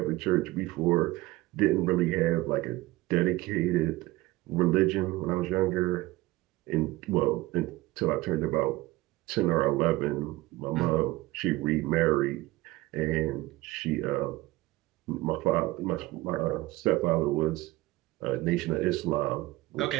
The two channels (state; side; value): quieter; left; 18.9 dB